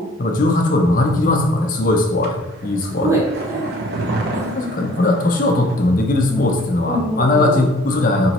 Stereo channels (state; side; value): normal; both; correlation 0.55